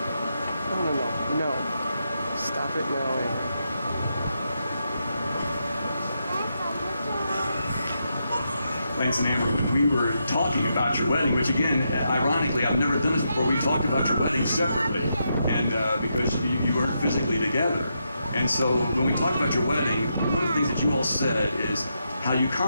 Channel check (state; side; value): inverted; both; correlation -0.82